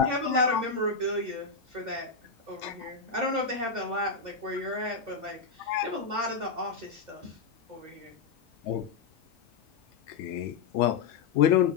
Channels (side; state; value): right; quieter; 5.1 dB